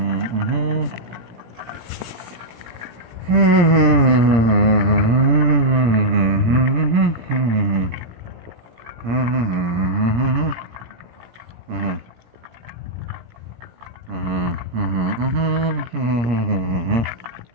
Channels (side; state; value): left; late; 17 ms